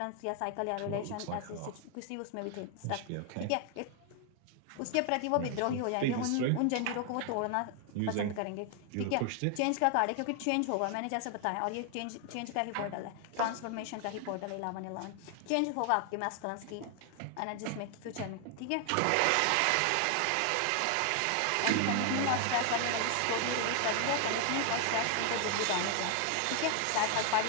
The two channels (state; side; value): different; both; correlation 0.00